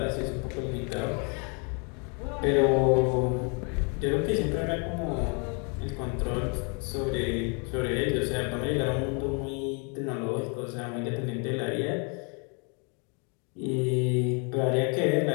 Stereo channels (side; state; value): right; quieter; 35.8 dB